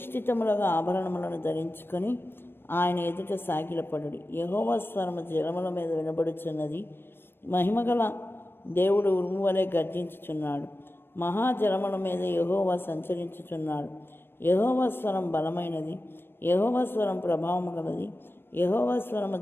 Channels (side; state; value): right; late; 0.11 ms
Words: ఆభరణములను ధరించుకొని ఆయన ఎదుట సాగిలపడుడి. యెహోవా స్వరము జలముల మీద వినబడుచున్నది. మహిమగల దేవుడు ఉరుము వలె గర్జించుచున్నాడు. మహాజలముల మీద యెహోవా సంచరించుచున్నాడు. యెహోవా స్వరం బలమైనది, యెహోవా స్వరం ప్రభావము గలది. యెహోవా స్వరము